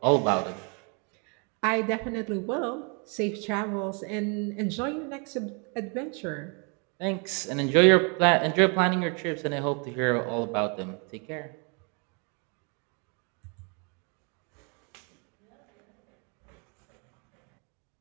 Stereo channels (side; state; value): left; quieter; 35.0 dB